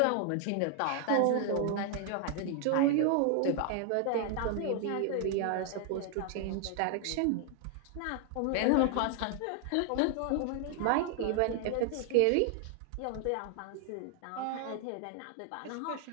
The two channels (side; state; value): both; different; correlation 0.00